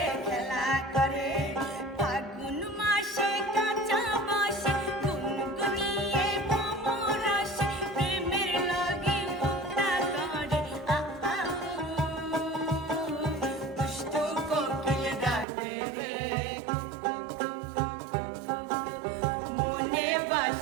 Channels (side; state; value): left; drops out; at 15.5 s